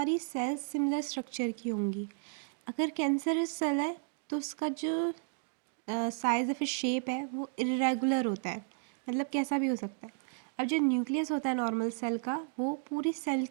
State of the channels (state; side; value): silent; left; digital silence